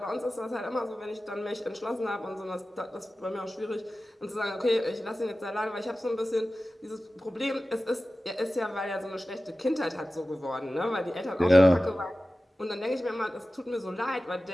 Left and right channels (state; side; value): normal; both; correlation 0.95